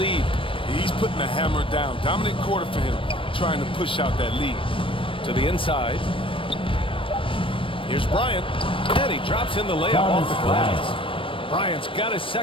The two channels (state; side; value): late; right; 0.25 ms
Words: He's putting the hammer down. Dominant quarter for him, trying to push out that lead. To the inside. Here's Bryant. And he drops in the layup off the glass. Bryant's got his